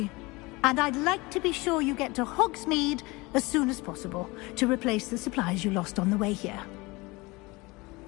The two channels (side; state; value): right; quieter; 23.7 dB